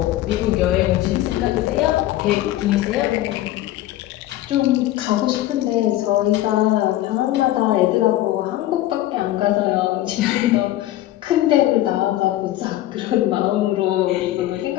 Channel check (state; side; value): quieter; right; 14.7 dB